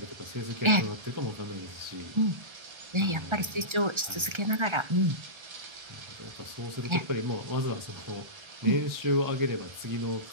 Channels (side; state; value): left; late; 1.3 ms